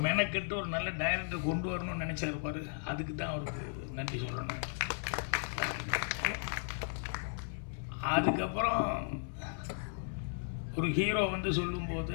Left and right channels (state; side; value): silent; right; 54 dB below the other